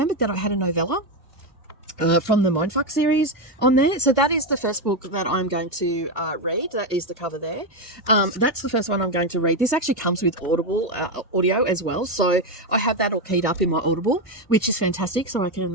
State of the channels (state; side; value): normal; both; correlation 0.09